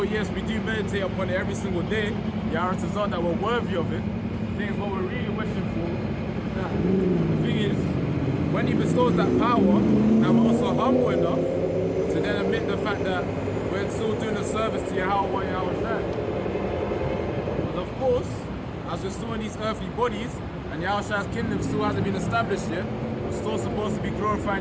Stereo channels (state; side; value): identical; both; correlation 1.00